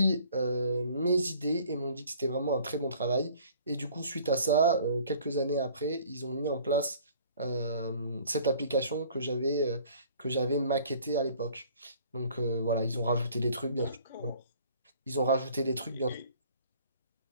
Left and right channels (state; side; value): inverted; both; correlation -0.53